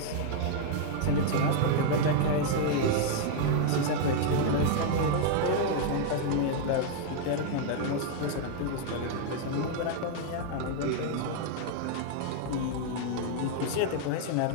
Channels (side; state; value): both; different; correlation 0.00